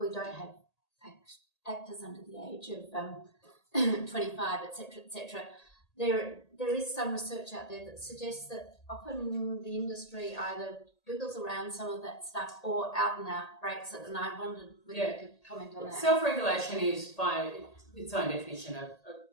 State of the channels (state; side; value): late; right; 1.8 ms